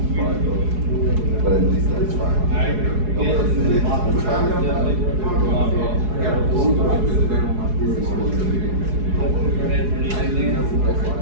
But at least that's fine.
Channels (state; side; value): late; left; 4.8 ms